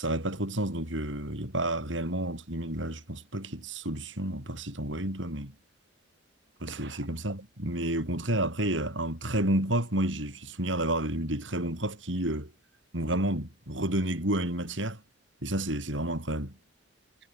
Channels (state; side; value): normal; both; correlation 0.33